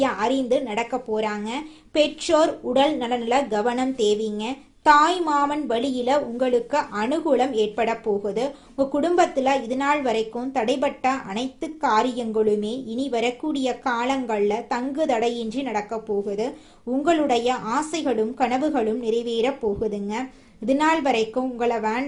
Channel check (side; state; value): both; identical; correlation 1.00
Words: அறிந்து நடக்க போறாங்க. பெற்றோர் உடல் நலனில கவனம் தேவைங்க. தாய் மாமன் வழியில உங்களுக்கு அனுகூலம் ஏற்பட போகுது. உங்க குடும்பத்துல இது நாள் வரைக்கும் தடைபட்ட அனைத்து காரியங்களுமே இனி வரக்கூடிய காலங்கள்ல தங்கு தடையின்றி நடக்க போகுது. உங்களுடைய ஆசைகளும் கனவுகளும் நிறைவேற போகுதுங்க. இது நாள் வரைக்கும் உங்களை